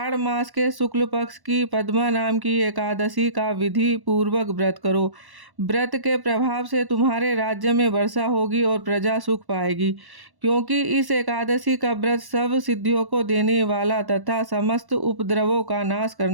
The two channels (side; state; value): left; late; 1.1 ms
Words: मास के शुक्ल पक्ष की पद्मा नाम की एकादशी का विधि पूर्वक व्रत करो। व्रत के प्रभाव से तुम्हारे राज्य में वर्षा होगी और प्रजा सुख पाएगी, क्योंकि इस एकादशी का व्रत सब सिद्धियों को देने वाला तथा समस्त उपद्रवों का नाश